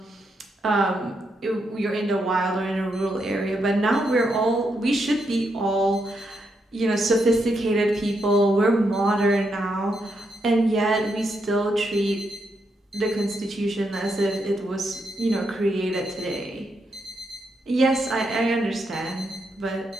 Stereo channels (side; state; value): both; normal; correlation 0.81